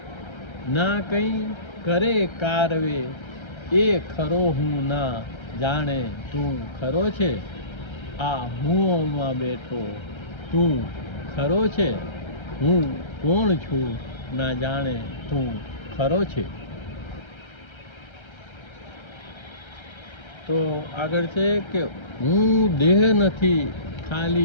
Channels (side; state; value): right; late; 1.3 ms